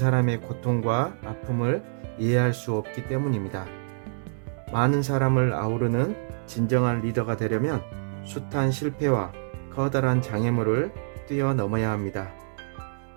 고통과 아픔을 이해할 수 없기 때문입니다. 많은 사람을 아우르는 진정한 리더가 되려면 숱한 실패와 커다란 장애물을 뛰어넘어야 합니다.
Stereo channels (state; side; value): silent; left; digital silence